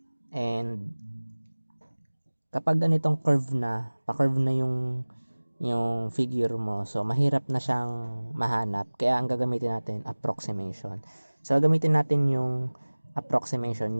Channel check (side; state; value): both; inverted; correlation -1.00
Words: And, kapag ganitong curve na, pa-curve na yung figure mo, so mahirap na siyang mahanap, kaya ang gagamitin natin approximation. So gagamitin natin yung approximation